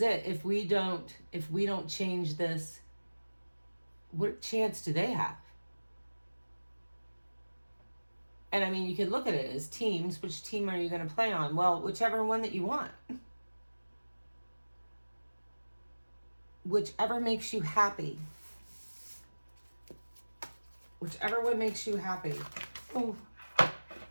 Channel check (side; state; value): both; inverted; correlation -1.00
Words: it. If we don't change this, what chance do they have? And I mean, you could look at it as teams. Which team are you going to play on? Well, whichever one that you want. Whichever makes you happy. Whichever one makes you happy. Oh,